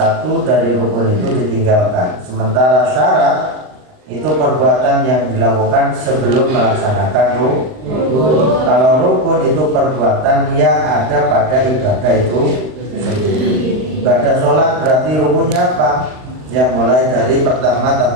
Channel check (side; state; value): left; late; 39 ms